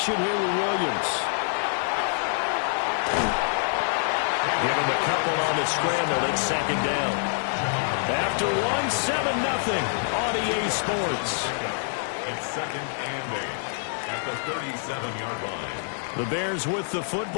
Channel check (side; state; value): right; silent; 61 dB below the other